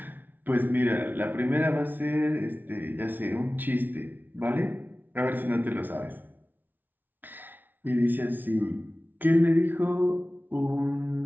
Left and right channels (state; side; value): late; left; 0.087 ms